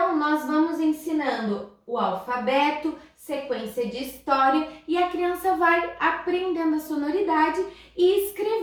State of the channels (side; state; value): both; identical; correlation 1.00